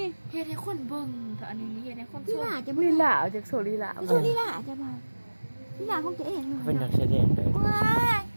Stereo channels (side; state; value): both; inverted; correlation -1.00